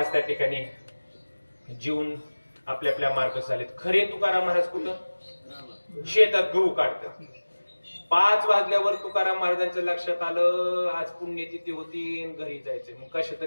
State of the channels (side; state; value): both; inverted; correlation -1.00